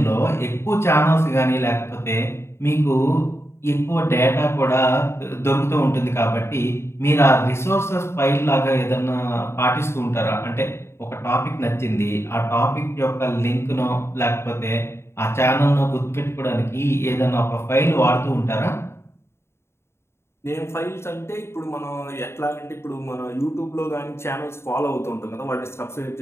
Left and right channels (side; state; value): right; late; 0.12 ms